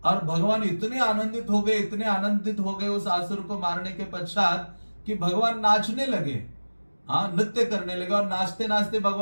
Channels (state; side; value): inverted; both; correlation -1.00